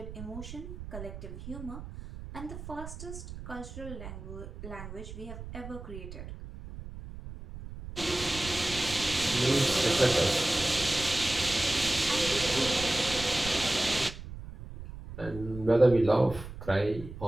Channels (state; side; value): noise; right; rumble, 12 dB below the sound